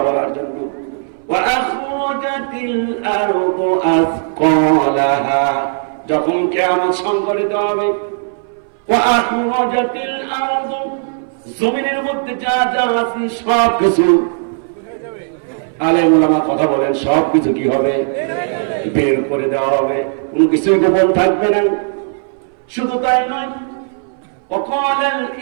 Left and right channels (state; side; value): silent; left; 63 dB below the other